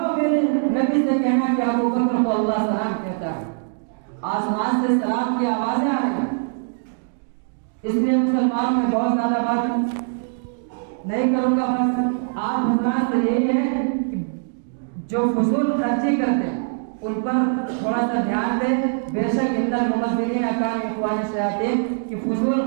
میرے نبی سے کہنا کہ ابوبکر کو اللہ سلام کہتا ہے۔ آسمان سے سلام کی آوازیں آ رہی ہیں، اس لیے مسلمانوں میں بہت زیادہ بات نہیں کروں گا، بس آپ حضرات سے یہی ہے کہ جو فضول خرچی کرتے ہیں ان پر تھوڑا سا دھیان دیں۔ بے شک ان المبذرین کانوا اخوان الشیاطین کہ فضول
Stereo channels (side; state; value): left; silent; digital silence